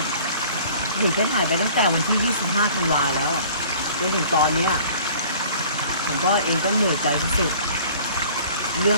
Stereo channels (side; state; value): both; inverted; correlation -0.49